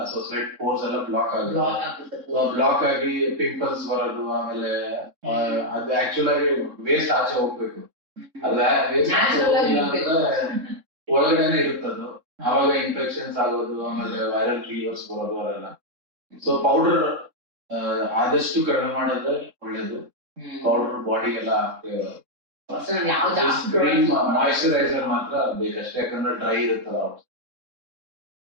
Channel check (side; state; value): left; late; 3.7 ms